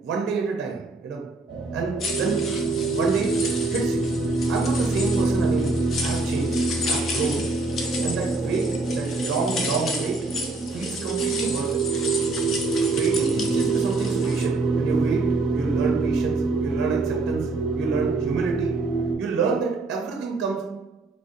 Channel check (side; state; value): left; quieter; 3.3 dB